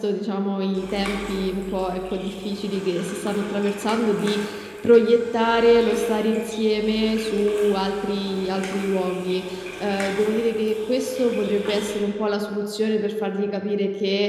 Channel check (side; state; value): both; identical; correlation 1.00